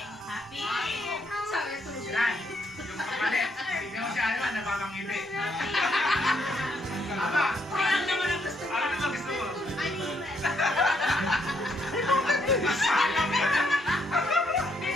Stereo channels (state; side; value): normal; both; correlation 0.73